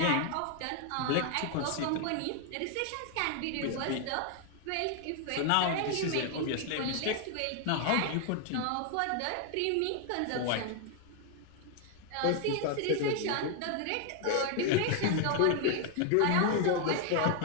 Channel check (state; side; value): different; both; correlation 0.00